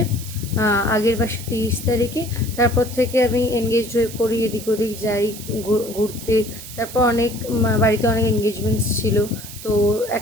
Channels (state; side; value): noise; right; hiss, 13 dB below the sound